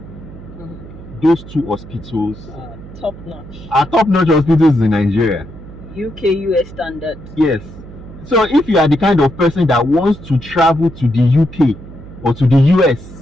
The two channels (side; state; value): right; noise; hum, 16 dB below the sound